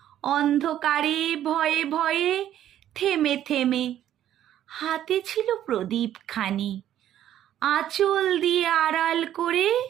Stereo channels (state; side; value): quieter; left; 11.5 dB